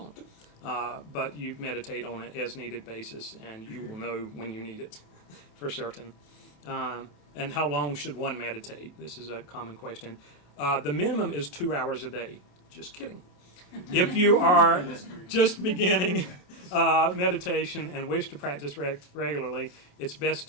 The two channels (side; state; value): right; late; 28 ms